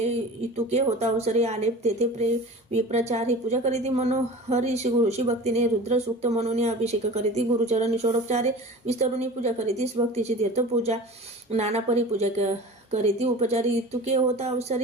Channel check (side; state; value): both; normal; correlation 0.37